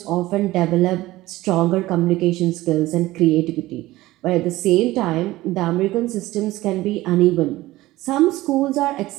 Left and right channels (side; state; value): left; quieter; 17.5 dB